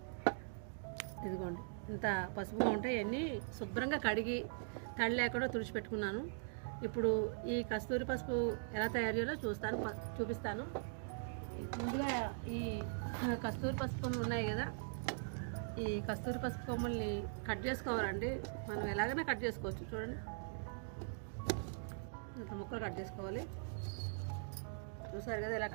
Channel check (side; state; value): left; silent; digital silence